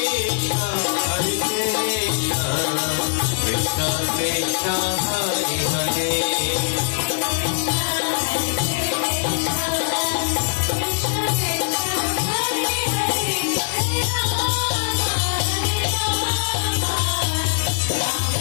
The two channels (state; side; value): silent; right; digital silence